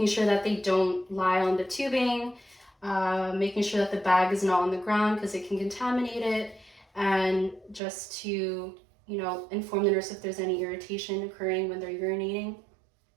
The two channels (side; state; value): left; drops out; at 7.8 s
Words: sure that they don't lie on the tubing, making sure that the bag is not on the ground because it can contaminate it, and just to, inform the nurse if there's any irritation occurring when they're urinating.